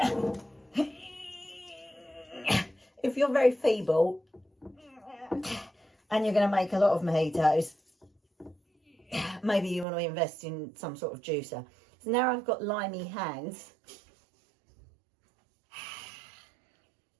If you're very feeble and you're going to make a lot of mojitos, maybe you want to invest in some sort of juicer. So now I've got limey hands.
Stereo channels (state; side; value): drops out; left; at 9.9 s